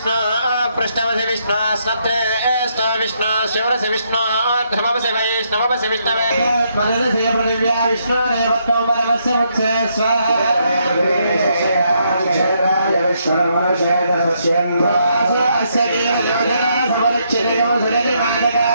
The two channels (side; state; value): both; inverted; correlation -0.75